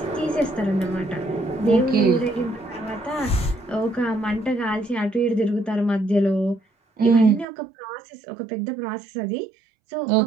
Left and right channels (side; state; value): left; drops out; at 7.5 s